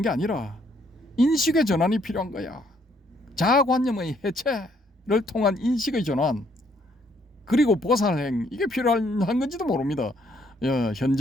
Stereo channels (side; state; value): both; normal; correlation 0.68